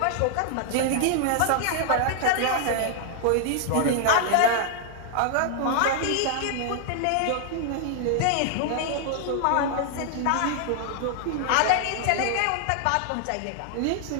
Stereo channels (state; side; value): different; both; correlation 0.00